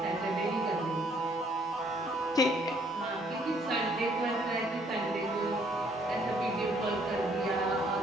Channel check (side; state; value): both; normal; correlation 0.64